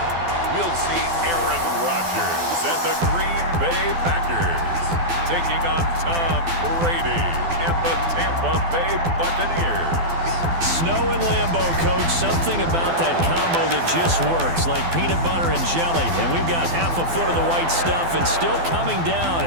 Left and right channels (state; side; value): late; left; 12 ms